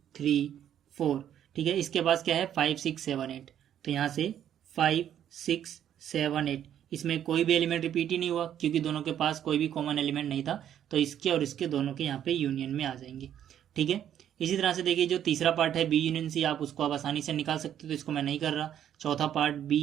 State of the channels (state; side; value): quieter; left; 10.2 dB